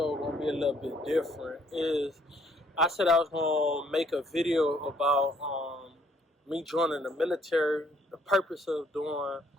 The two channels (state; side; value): normal; both; correlation 0.65